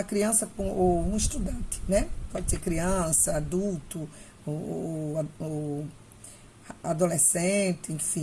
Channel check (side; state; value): both; identical; correlation 1.00